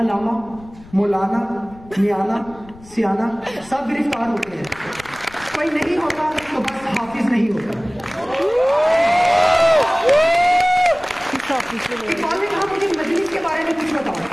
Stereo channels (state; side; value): noise; left; rumble, 22 dB below the sound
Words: मौलाना, मियाना, सियाना सब गिरफ्तार होते हैं। कोई नहीं होता तो बस हाफिज नहीं होता। इकबाल ने कहा मुझे मजलिस के बारे में कुछ बताओ।